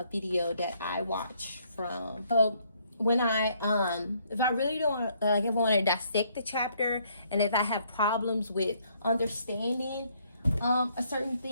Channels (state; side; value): inverted; both; correlation -0.68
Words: video that I watch from. So when if I really don't if I want to dissect the chapter, and if I have problems with understanding a certain